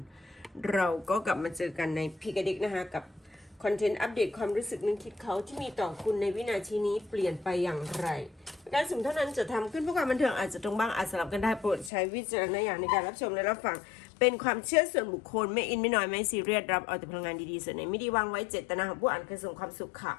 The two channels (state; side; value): drops out; right; at 11.9 s